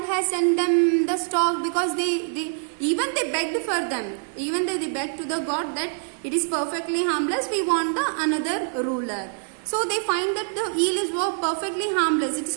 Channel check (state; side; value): silent; left; 57 dB below the other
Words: has sent them the stork? Because they begged for them. Even they begged to the God that it is perfectly harmless, we want another ruler. So they find that the eel is perfectly harmless. It is